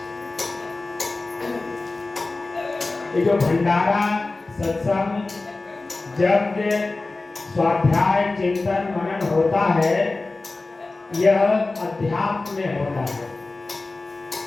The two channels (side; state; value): right; quieter; 3.4 dB